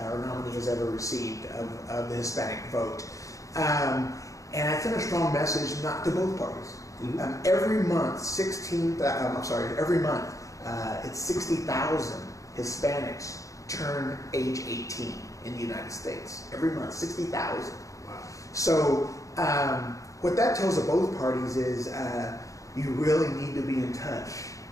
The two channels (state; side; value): late; right; 0.16 ms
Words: nominee has ever received of the Hispanic vote. And I sent a strong message not to both parties. Every month, it's 60,000 Hispanics turn age 18 in the United States. Every month, 60,000. Wow. So what that tells of both parties is you really need to be in touch